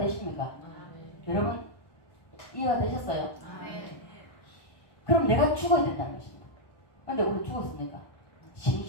여러분 이해가 되셨어요? 그럼 내가 죽어야 된다는 것입니다. 그런데 우리 죽었으니까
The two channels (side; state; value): right; late; 1.2 ms